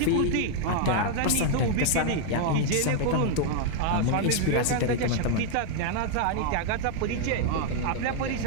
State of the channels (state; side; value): different; both; correlation 0.00